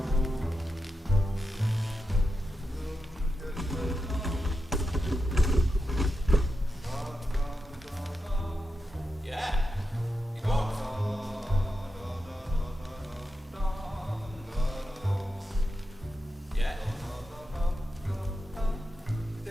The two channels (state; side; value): normal; both; correlation 0.88